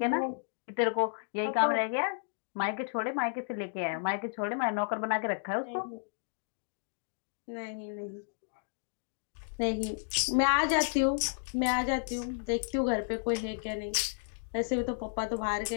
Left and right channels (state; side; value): silent; right; digital silence